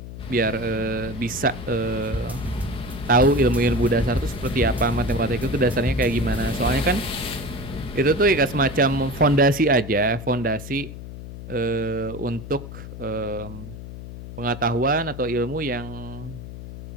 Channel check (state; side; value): noise; left; hum, 11 dB below the sound